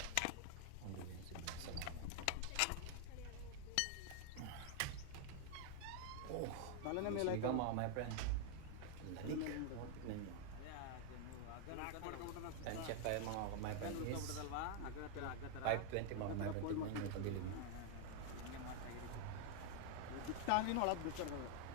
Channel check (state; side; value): different; both; correlation 0.00